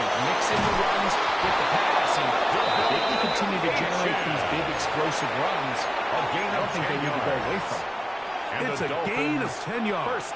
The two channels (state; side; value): identical; both; correlation 1.00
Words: mix in the runs with the pass, and if they can continue to generate these big explosive runs, I don't think they need to go away from it. It's a gain of 10 yards.